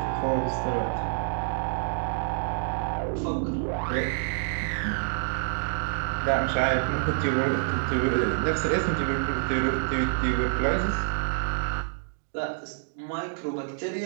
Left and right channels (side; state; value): left; silent; digital silence